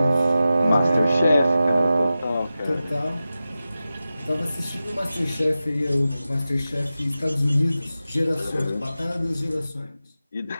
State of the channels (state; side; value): inverted; both; correlation -0.93